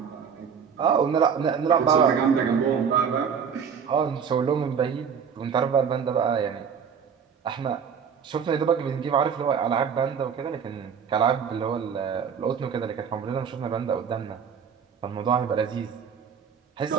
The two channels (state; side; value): quieter; left; 7.0 dB